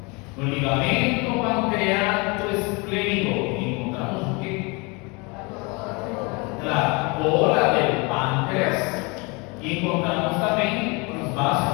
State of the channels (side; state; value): right; quieter; 28.7 dB